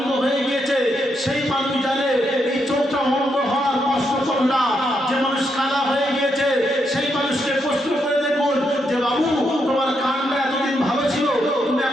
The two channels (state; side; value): normal; both; correlation 0.80